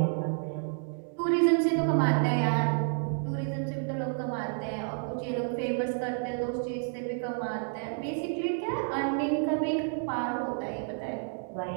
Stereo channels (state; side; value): silent; left; digital silence